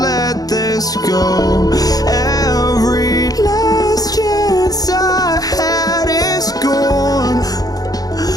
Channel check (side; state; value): right; late; 0.18 ms